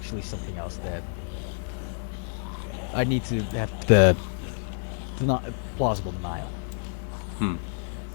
something else that I need to have the plausible denial.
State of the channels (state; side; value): silent; right; digital silence